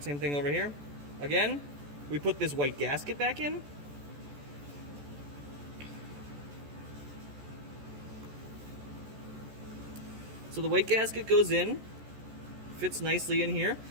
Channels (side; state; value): left; late; 14 ms